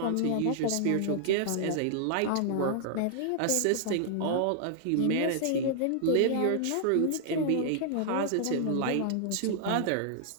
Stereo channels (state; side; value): different; both; correlation -0.01